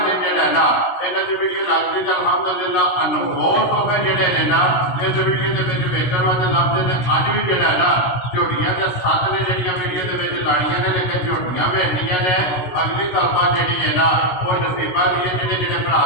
दिन जड़ा ना इन्हां दी वीडियो लगती तो अलहमदुलिल्लाह अनमोल हो गए जड़े ने ना इस वीडियो के वेखण वास्ते लभदे ने। अज भी जड़ा ना झोटियां के सत्त ने जड़ियां वीडियो के लाड़ियां ने लेकिन झोटियां भेजनियां ने। अगली गलबात जी है ना वो नसीबा की है जेडे जेडे भरा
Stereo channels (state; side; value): late; right; 16 ms